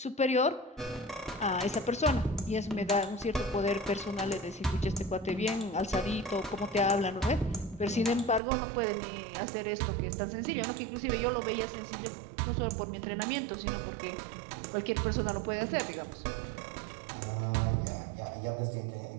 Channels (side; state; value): left; drops out; at 8.4 s